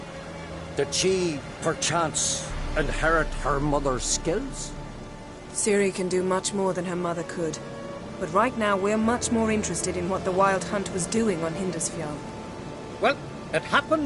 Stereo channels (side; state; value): both; identical; correlation 1.00